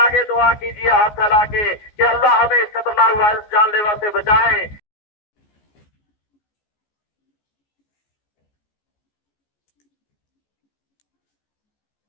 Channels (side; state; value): right; late; 14 ms